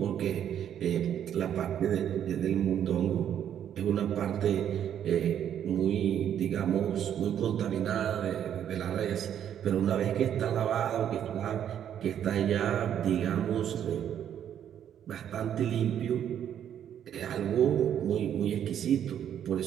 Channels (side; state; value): left; quieter; 9.7 dB